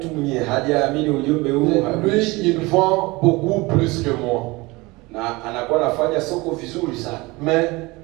mwenye hajaamini ujumbe huu. Lui, il vend beaucoup plus que moi. Na anakuwa anafanya soko vizuri sana. Mais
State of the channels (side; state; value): left; quieter; 23.0 dB